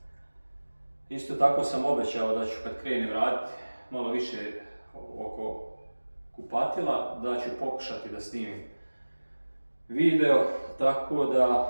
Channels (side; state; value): both; inverted; correlation -1.00